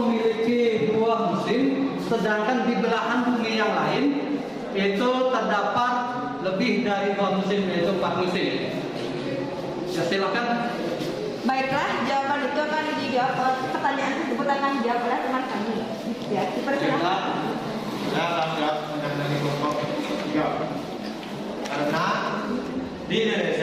2 musim, sedangkan di belahan bumi yang lain itu terdapat lebih dari 2 musim, yaitu 4 musim? Ya, silakan. Baiklah, jawaban itu akan dijawab, pertanyaan tersebut akan dijawab oleh teman kami. Ya, dipersilakan. Saya akan jawab dari kelompok 3. Karena di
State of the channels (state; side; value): identical; both; correlation 1.00